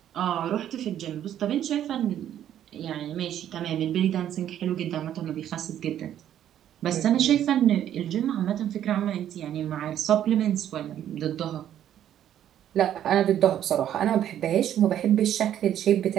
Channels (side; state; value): left; quieter; 10.8 dB